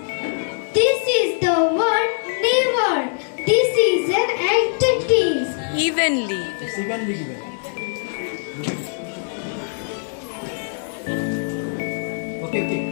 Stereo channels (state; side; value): silent; right; digital silence